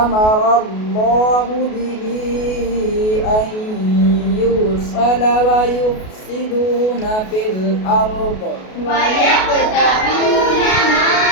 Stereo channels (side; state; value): right; late; 33 ms